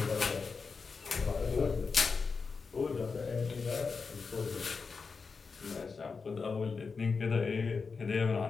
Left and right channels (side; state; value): right; quieter; 4.9 dB